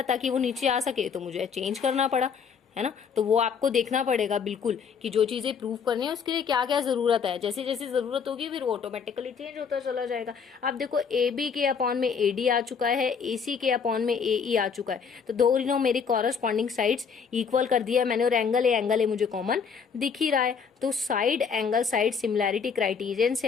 ताकि वो नीचे आ सके, तो मुझे चेंज करना पड़ा, है ना। तो वो आपको देखना पड़ेगा बिल्कुल कि जो चीजें प्रूव करनी है उसके लिए क्या क्या जरूरत है। जैसे जैसे जरूरत होगी फिर वो ऑटोमेटिकली चेंज होता चला जाएगा। अब देखो ए बी के अपॉन में ए डी आ चुका है, ए सी के अपॉन में ए ई आ चुका है, तो दोनों मेरी कॉरस्पॉन्डिंग साइड्स इक्वल कर दिया मैंने, और एंगल ए मुझे कॉमन दिख ही रहा है। तो side angle side similarity criterion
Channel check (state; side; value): quieter; right; 6.2 dB